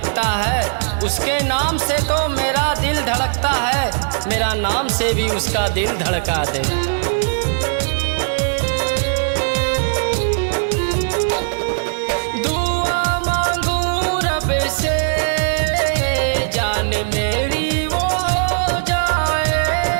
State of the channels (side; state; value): left; silent; digital silence